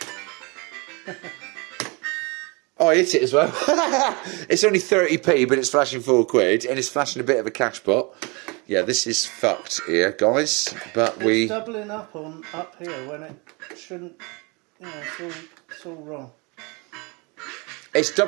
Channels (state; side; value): quieter; left; 29.1 dB